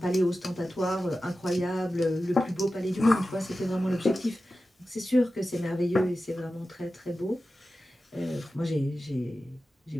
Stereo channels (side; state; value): both; normal; correlation 0.94